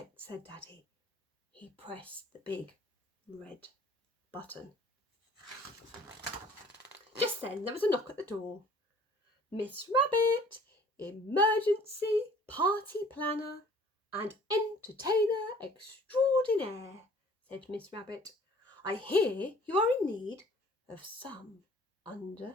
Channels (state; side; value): normal; both; correlation 0.53